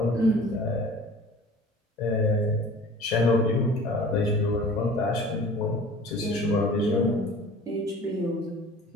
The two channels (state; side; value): normal; both; correlation 0.44